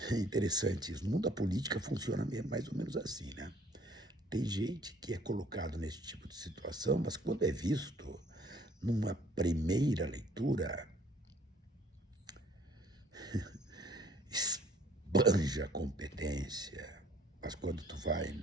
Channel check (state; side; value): normal; both; correlation 0.58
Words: É interessante isso. No mundo da política funciona mesmo mais ou menos assim, né? Tem gente que é colocado nesse tipo de situação, mas quando é visto numa primeira leitura, esbanja a competência. Mas quando tu vai